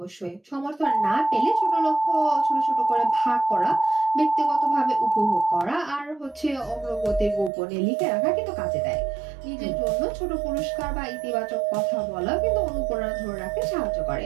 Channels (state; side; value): drops out; left; at 7.5 s